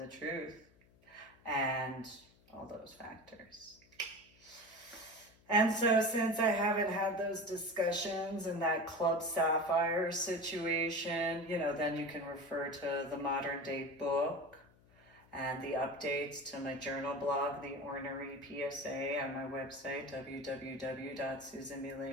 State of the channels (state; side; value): noise; left; hum, 29 dB below the sound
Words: truth and all those factors. And so since I haven't had those discussions and that Club Sapphire situation, then you can refer to the modern day book and the updates to my journal blog, The Ornery PSA, on my website,